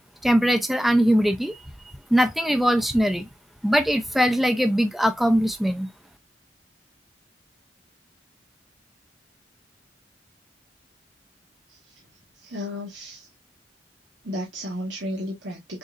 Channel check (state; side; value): normal; both; correlation 0.93